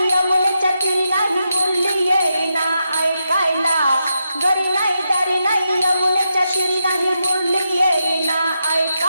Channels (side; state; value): both; inverted; correlation -0.84